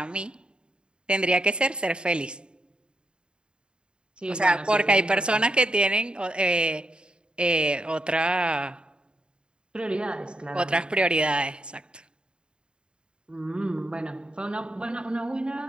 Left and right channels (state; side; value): late; left; 0.051 ms